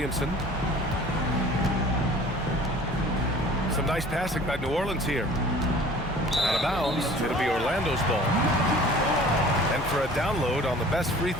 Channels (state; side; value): normal; both; correlation 0.47